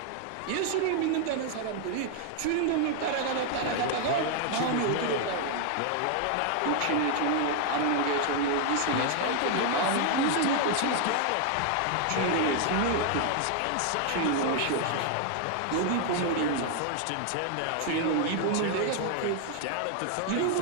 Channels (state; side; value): different; both; correlation 0.00